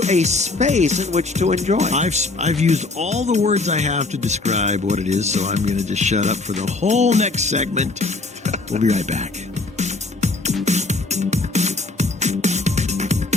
a space in which to enjoy. I've used all the words I have to describe what it is, so I'm going to just shut up for the whole next segment. We'll be right back.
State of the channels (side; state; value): right; quieter; 3.4 dB